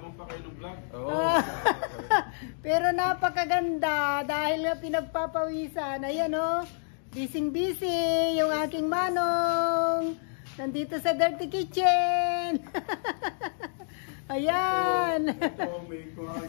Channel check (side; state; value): right; silent; digital silence